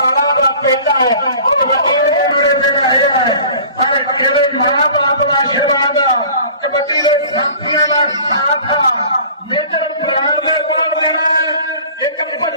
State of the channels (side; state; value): both; inverted; correlation -0.45